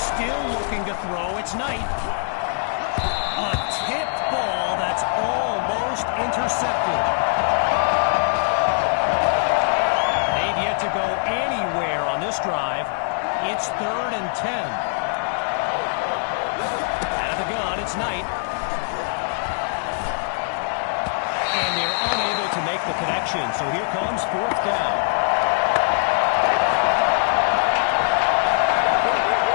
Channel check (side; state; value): right; silent; 64 dB below the other